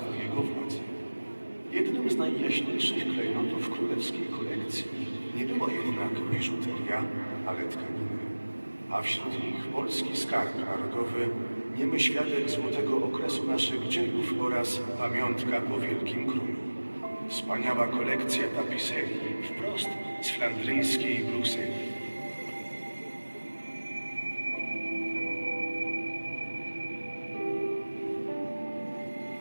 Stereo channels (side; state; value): both; inverted; correlation -1.00